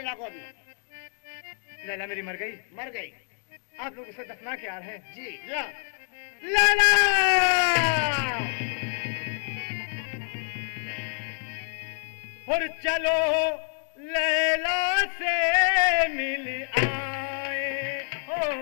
को अभी। लैला मेरी मर गई? मर गई। आप लोग उसे दफना के आ रहे हैं? जी। या लैला! और चलो लैला से मिल आए हो,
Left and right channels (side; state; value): right; silent; 56 dB below the other